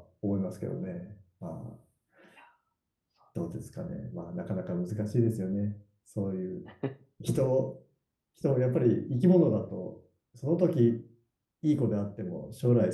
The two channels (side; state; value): both; identical; correlation 1.00